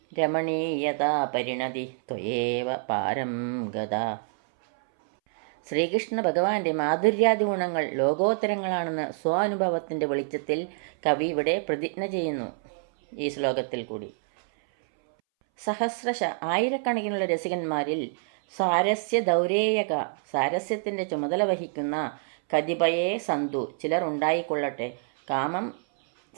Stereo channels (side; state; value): left; silent; 60 dB below the other